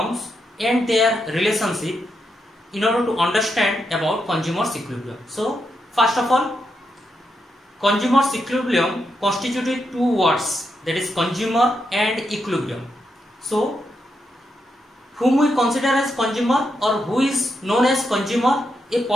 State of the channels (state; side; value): normal; both; correlation 0.83